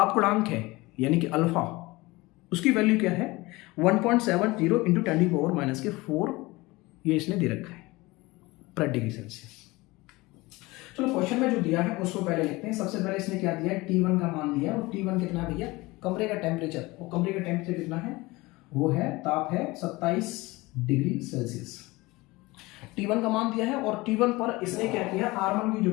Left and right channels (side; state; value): right; quieter; 21.7 dB